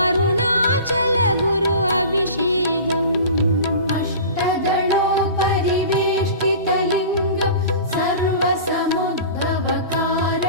அருணாச்சல குரு அபிஷேகம். अष्टदलोपरिवेष्टितलिङ्गं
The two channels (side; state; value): both; inverted; correlation -0.38